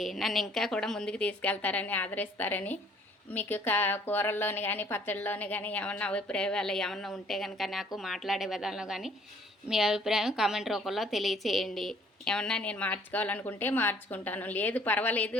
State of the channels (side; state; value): both; normal; correlation 0.58